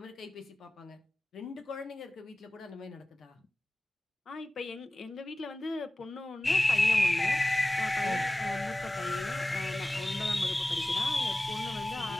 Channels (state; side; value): normal; both; correlation 0.97